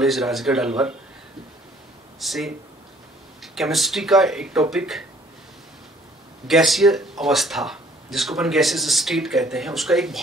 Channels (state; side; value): normal; both; correlation 0.58